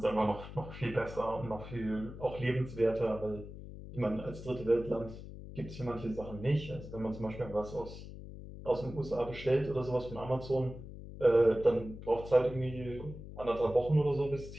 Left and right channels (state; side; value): noise; left; hum, 12 dB below the sound